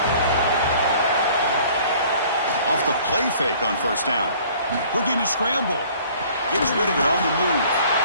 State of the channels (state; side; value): inverted; both; correlation -0.53